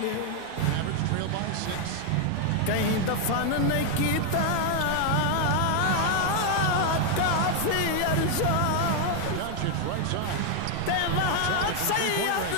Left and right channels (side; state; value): both; different; correlation 0.00